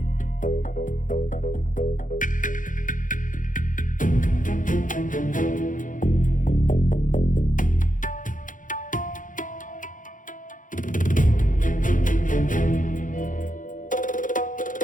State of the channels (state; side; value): late; right; 0.38 ms